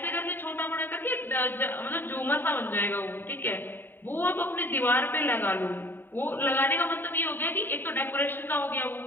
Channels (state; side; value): late; right; 0.095 ms